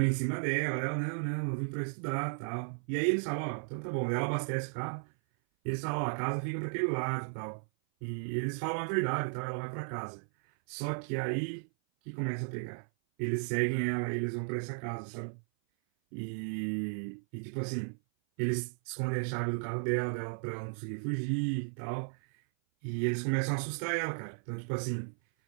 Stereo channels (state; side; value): silent; left; 55 dB below the other